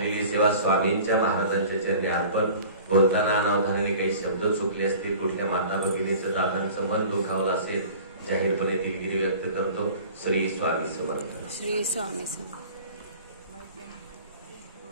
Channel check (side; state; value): both; inverted; correlation -0.44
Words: सेवा स्वामींच्या महाराजांच्या चरणी अर्पण. बोलताना अनावधानाने काही शब्द चुकले असतील, कुठल्या माता भगिनीचं दादांचं मन दुखावलं असेल, जाहीरपणे दिलगिरी व्यक्त करतो. श्री स्वामी समर्थ. श्री स्वामी समर्थ.